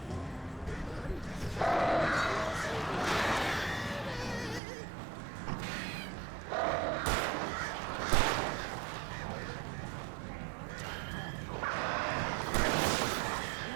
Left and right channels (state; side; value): drops out; left; at 4.6 s